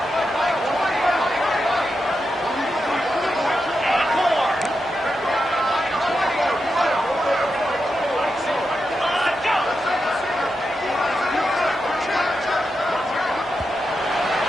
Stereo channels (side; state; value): both; normal; correlation 0.87